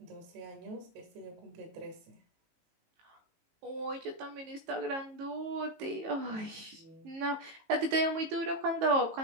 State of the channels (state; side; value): late; left; 18 ms